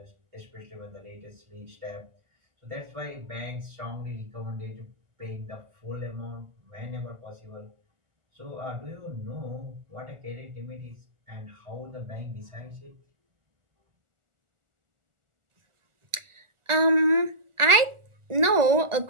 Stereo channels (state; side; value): late; left; 1.4 ms